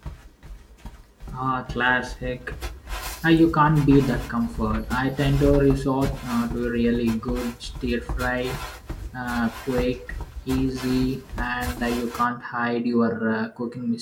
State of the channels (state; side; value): identical; both; correlation 1.00